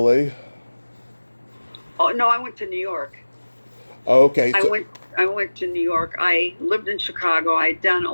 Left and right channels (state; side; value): inverted; both; correlation -1.00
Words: Oh, no, I went to New York. Oh, okay. I went to New York. I lived in Chicago. I'd done a